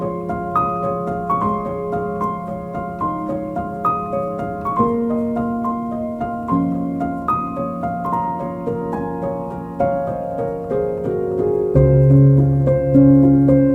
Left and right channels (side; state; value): both; identical; correlation 1.00